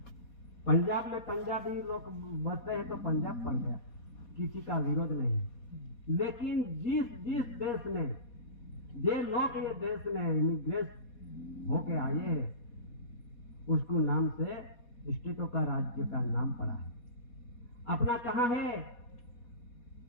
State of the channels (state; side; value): late; right; 4.2 ms